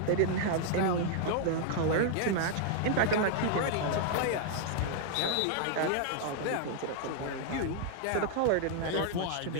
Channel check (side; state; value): both; different; correlation 0.00